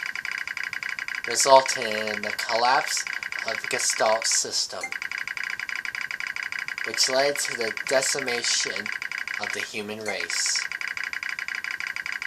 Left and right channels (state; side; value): identical; both; correlation 1.00